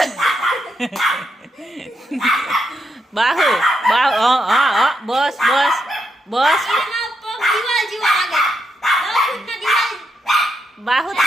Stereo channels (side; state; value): both; normal; correlation 0.81